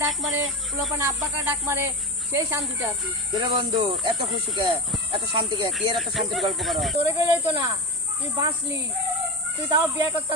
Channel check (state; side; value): normal; both; correlation 0.21